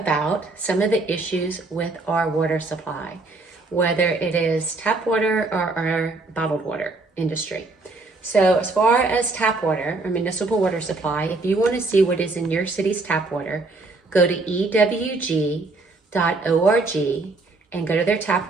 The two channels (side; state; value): left; quieter; 3.4 dB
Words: some of the issues with our water supply, whether it is tap water or our bottled water industry. So as far as tap water or municipal water supply, if you want to see what is in your city's tap water, go to ewg.org and go to their tap